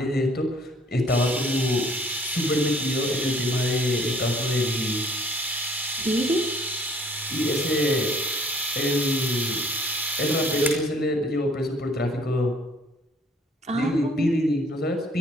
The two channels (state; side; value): normal; both; correlation 0.59